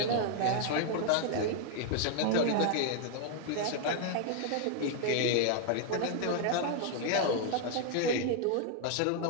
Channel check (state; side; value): different; both; correlation 0.00